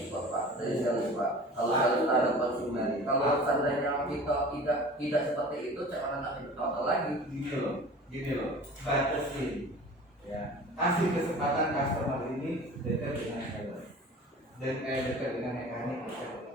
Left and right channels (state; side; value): normal; both; correlation 0.41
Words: Pak, dari sales Pak. Kalau sales ada konsumen, kalau seandainya kita tidak seperti itu, cara nak contoh lagi. Gini loh, batasin, ya, kasih kesempatan customer ini dekat dengan sales dan dekat dengan mekanik, dekat